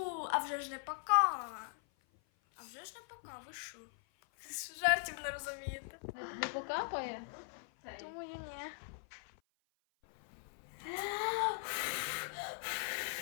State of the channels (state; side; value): silent; right; 51 dB below the other